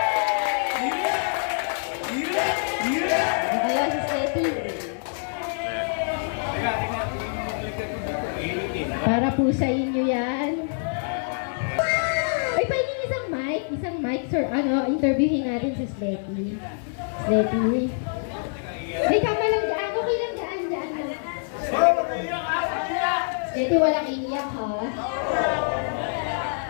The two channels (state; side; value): silent; right; digital silence